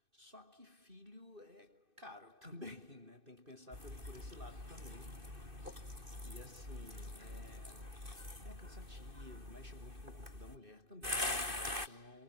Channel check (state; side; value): late; left; 2.6 ms